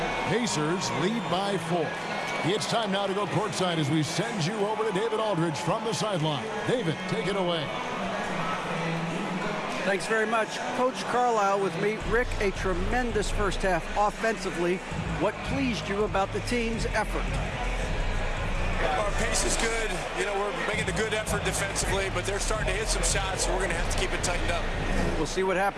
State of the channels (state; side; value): identical; both; correlation 1.00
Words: Pacers lead by 4. It's time now to go courtside as we send you over to David Aldridge from the sideline. David, take it away. Thanks very much. Coach Carlisle with me. Rick, a tremendous first half offensively. What pleased you about the team's effort? Our pace is good. You know, we're making a good effort defensively, but they're starting to hit some shots, so we're going to have to keep it tightened up. We'll see what